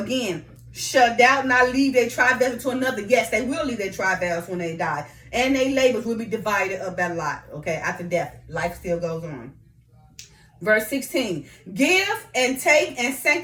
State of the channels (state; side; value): identical; both; correlation 1.00